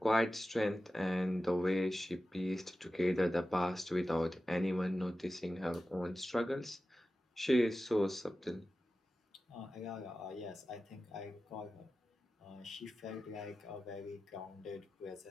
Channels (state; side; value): normal; both; correlation 0.94